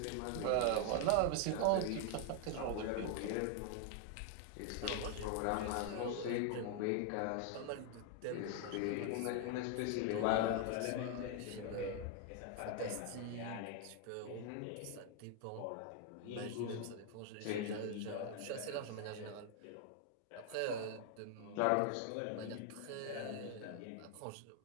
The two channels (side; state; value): both; different; correlation 0.00